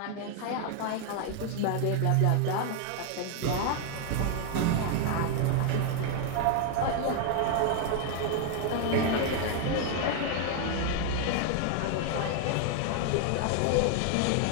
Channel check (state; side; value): different; both; correlation 0.00